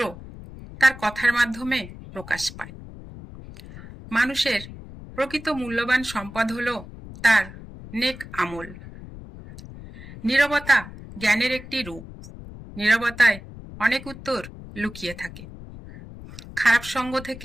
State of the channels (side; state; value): left; noise; rumble, 15 dB below the sound